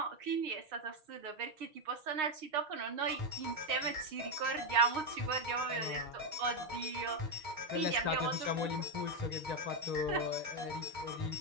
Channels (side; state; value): left; late; 6.5 ms